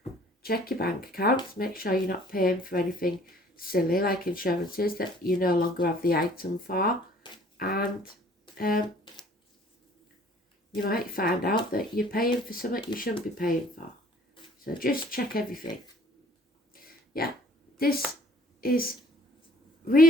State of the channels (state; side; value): normal; both; correlation 0.55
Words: Check your bank accounts, make sure you're not paying for anything silly like insurances that you no longer have the item for, and you might find out that you're paying for something you shouldn't be paying for. So just check everything. Yeah, this is